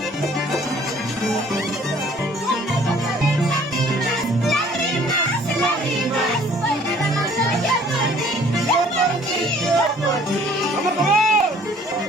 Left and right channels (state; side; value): normal; both; correlation 0.56